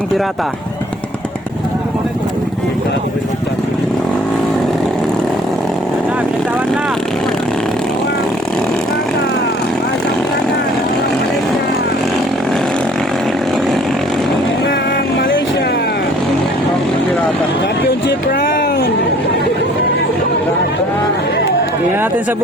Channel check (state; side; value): normal; both; correlation 0.55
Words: Pirata. Binitawan na. Malaysia. Championship round. Tingnan natin sa